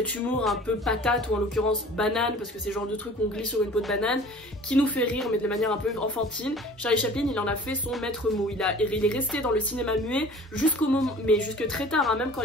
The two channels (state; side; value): normal; both; correlation 0.45